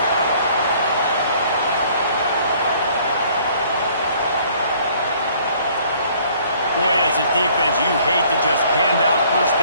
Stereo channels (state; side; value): inverted; both; correlation -0.58